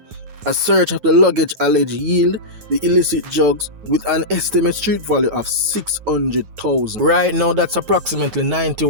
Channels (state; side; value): late; left; 9.5 ms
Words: A search of the luggage alleged yield the illicit drugs with an estimated street value of $600,000. Right now, that's approximately